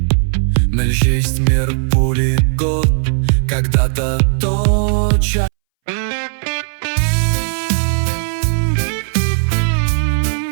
Мельчесть мир пули год, когда-то точа.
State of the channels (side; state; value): left; silent; 66 dB below the other